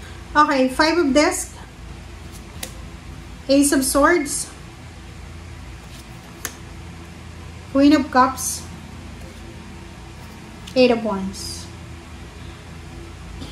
Okay, 5 of Discs, Ace of Swords, Queen of Cups, 8 of Wands.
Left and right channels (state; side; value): identical; both; correlation 1.00